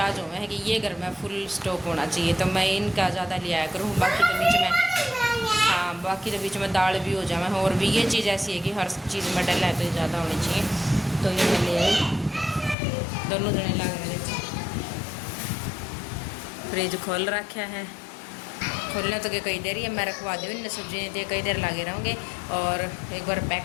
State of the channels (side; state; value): right; drops out; at 12.8 s